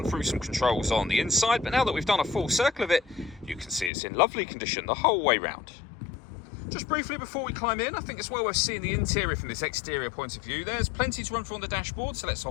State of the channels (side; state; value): right; drops out; at 3.9 s